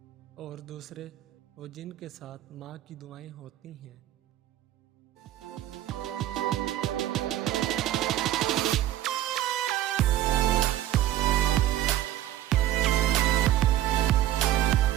اور دوسرے وہ جن کے ساتھ ماں کی دعائیں ہوتی ہیں۔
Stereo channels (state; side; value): quieter; left; 13.1 dB